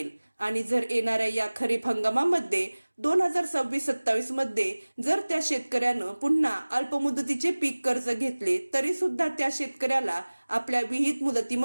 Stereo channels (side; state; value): both; inverted; correlation -1.00